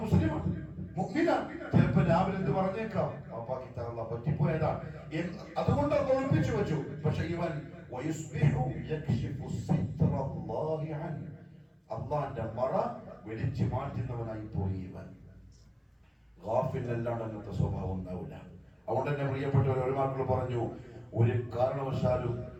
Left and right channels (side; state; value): both; identical; correlation 1.00